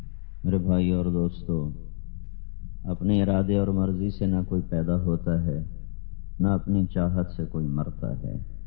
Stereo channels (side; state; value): right; silent; digital silence